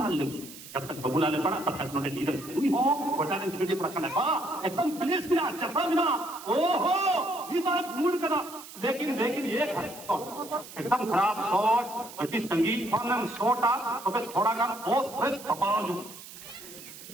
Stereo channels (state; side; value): noise; right; hiss, 15 dB below the sound